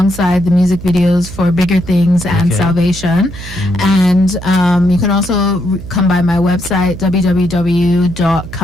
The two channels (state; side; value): noise; right; hum, 13 dB below the sound